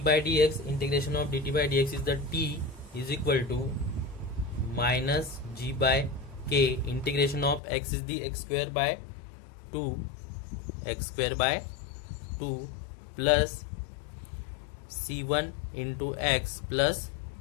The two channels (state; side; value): drops out; right; at 7.6 s